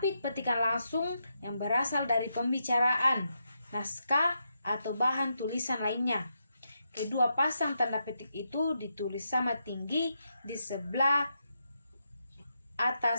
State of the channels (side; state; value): both; inverted; correlation -0.83